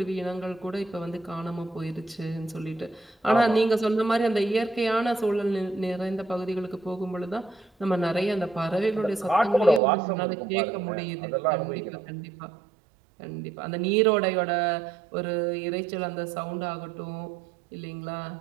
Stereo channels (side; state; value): left; drops out; at 9.8 s